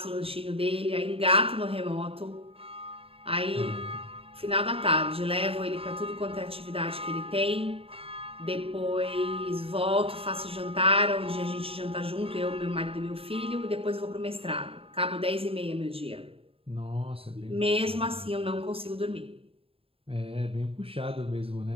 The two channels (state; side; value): late; left; 0.27 ms